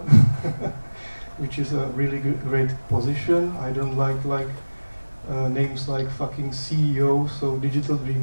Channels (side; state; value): both; inverted; correlation -1.00